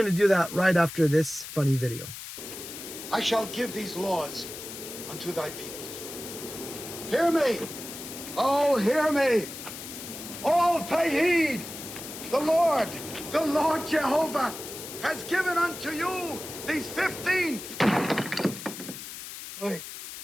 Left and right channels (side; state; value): left; noise; hiss, 11 dB below the sound